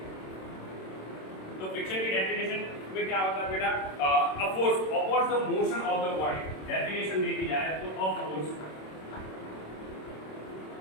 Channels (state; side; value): late; right; 26 ms